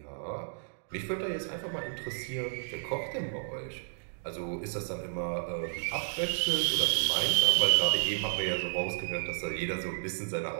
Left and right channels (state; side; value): silent; left; digital silence